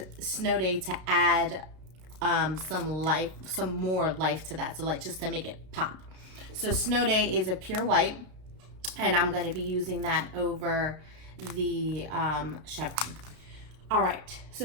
Snow Day to add some more life to that. So like just to make it pop. So Snow Day is a pure white. And I'm going to be using that over the Chevron. All right,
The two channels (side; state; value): left; late; 32 ms